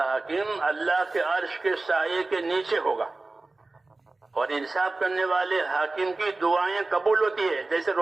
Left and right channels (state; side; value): quieter; left; 3.3 dB